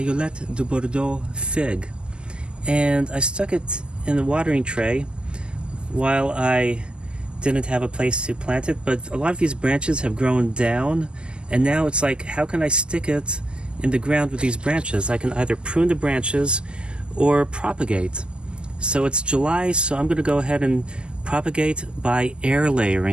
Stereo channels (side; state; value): left; late; 0.056 ms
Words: de Bordeaux fig and I stuck it in the watering tray while I didn't have a place to plant it, but a lot of these branches have grown down and now it's like, how can I stick it in the ground with these branches? I can either prune the branches or propagate. So it's July, so I'm going to go ahead and propagate by air